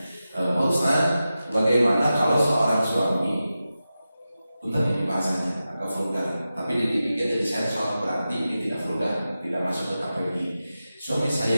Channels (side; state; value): both; inverted; correlation -0.93